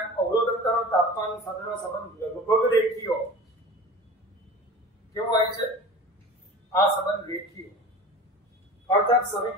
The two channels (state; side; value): normal; both; correlation 0.36